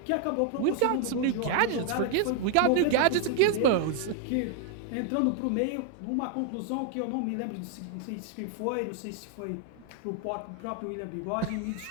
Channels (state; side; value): different; both; correlation 0.00